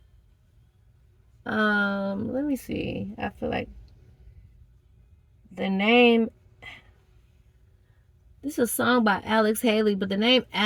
let me see. I feel like the name This is a song by Alex Haley, but the name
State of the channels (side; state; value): both; identical; correlation 1.00